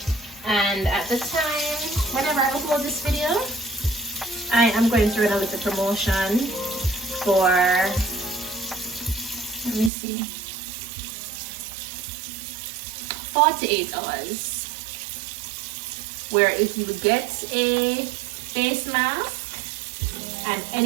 And at the time, whenever I upload this video, I am going to run a little promotion for, let me see, 48 hours. Where if you get a face mask and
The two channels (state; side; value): drops out; left; at 9.9 s